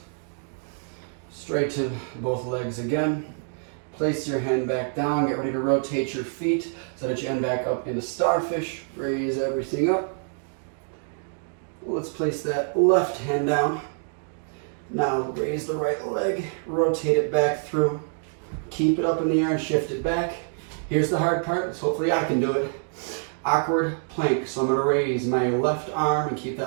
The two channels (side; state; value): left; silent; 61 dB below the other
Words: Straighten both legs again. Place your hand back down. Get ready to rotate your feet so that you end back up into starfish. Raise everything up. Let's place that left hand down. Now raise the right leg. Rotate it back through. Keep it up in the air and shift it back. Here's the hard part. So hopefully I can do it. Awkward plank. So I'm going to raise my left arm and keep